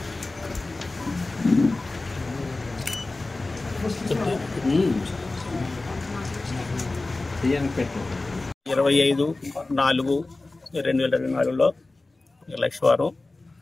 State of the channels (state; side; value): quieter; right; 3.2 dB